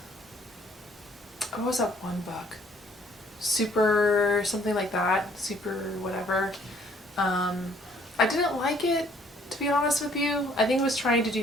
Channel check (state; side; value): normal; both; correlation 0.62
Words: what was that one book? Super something like that. Super whatever. I didn't like it, to be honest with you. I think it was trying to